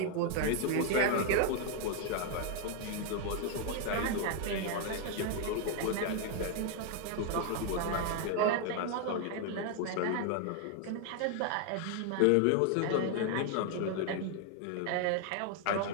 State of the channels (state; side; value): different; both; correlation 0.00